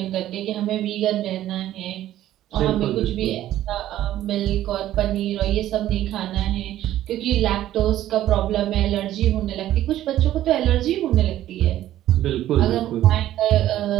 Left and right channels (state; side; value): quieter; left; 13.2 dB